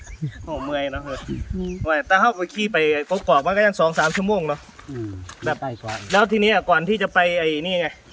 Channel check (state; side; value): identical; both; correlation 1.00